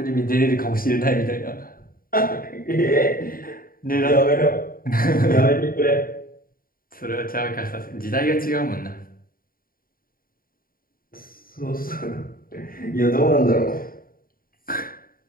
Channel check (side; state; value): right; late; 0.42 ms